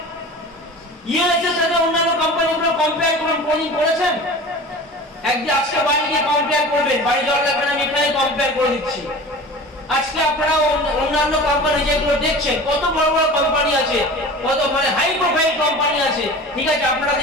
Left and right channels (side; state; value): both; normal; correlation 0.37